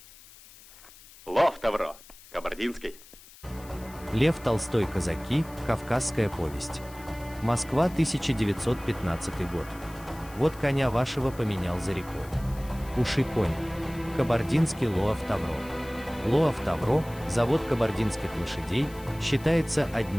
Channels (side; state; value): left; noise; hiss, 21 dB below the sound